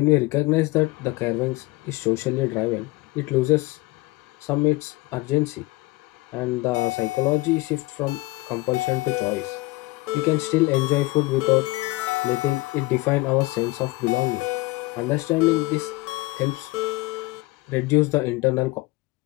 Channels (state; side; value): quieter; right; 21.4 dB